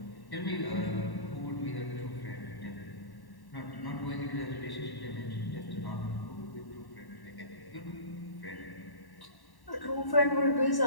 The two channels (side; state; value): right; late; 1.1 ms